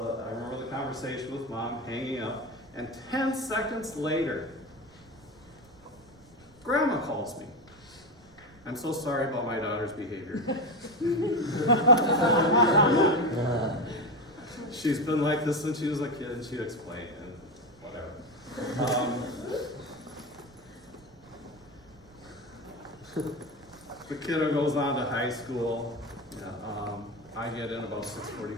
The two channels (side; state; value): right; noise; rumble, 26 dB below the sound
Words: I remember the conversation with mom hanging up, and 10 seconds later, Grandma calls me. I'm so sorry about my daughter's behavior. She's been like this since she was a kid, and she'd explain, and whatever. The kiddo goes on to high school. Yeah, I get in about